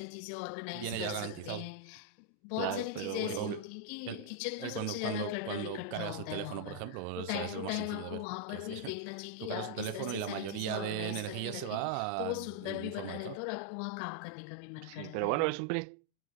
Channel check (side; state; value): both; different; correlation -0.01